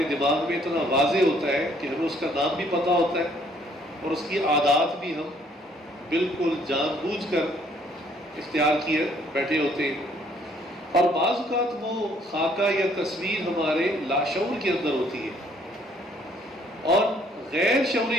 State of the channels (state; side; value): normal; both; correlation 0.63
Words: دماغ میں اتنا واضح ہوتا ہے کہ ہمیں اس کا نام بھی پتہ ہوتا ہے، اور اس کی عادات بھی ہم بالکل جان بوجھ کر اختیار کیے بیٹھے ہوتے ہیں. اور بعض اوقات وہ خاکہ یا تصویر ہمارے لاشعور کے اندر ہوتی ہے، اور غیر شعوری